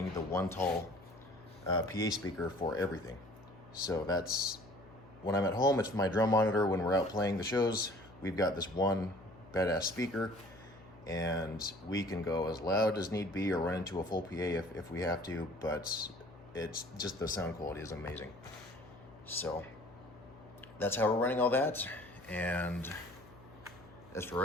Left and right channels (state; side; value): noise; left; hum, 21 dB below the sound